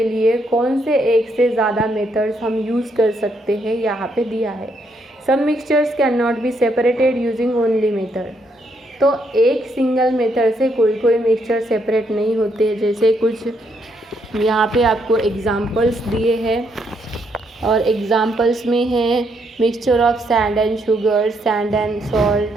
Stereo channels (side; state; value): both; normal; correlation 0.75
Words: लिए कौन से एक से ज़्यादा मेथड्स हम यूज़ कर सकते हैं, यहाँ पे दिया है। Some mixtures can not be separated using only method. तो एक सिंगल मेथड से कोई मिक्सचर सेपरेट नहीं होते। जैसे कुछ यहाँ पे आपको एग्जांपल्स दिए हैं और एग्जांपल्स में है mixture of sand and sugar, sand and